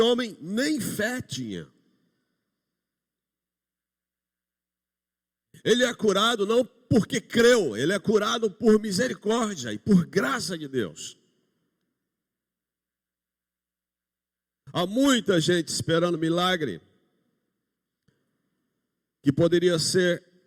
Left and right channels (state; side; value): identical; both; correlation 1.00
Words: nem fé tinha. Ele é curado não porque creu, ele é curado por misericórdia e por graça de Deus. Há muita gente esperando milagre que poderia ser